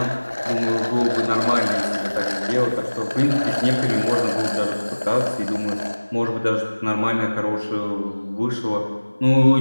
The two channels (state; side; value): inverted; both; correlation -1.00